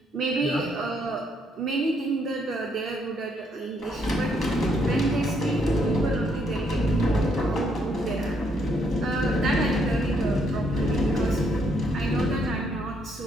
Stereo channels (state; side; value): normal; both; correlation 0.72